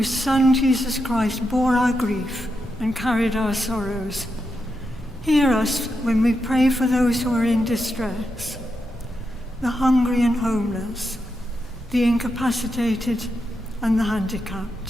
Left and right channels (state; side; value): normal; both; correlation 0.86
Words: Son Jesus Christ bore our grief and carried our sorrows, hear us when we pray for those who are in distress, the hungry and homeless, the incapacitated and the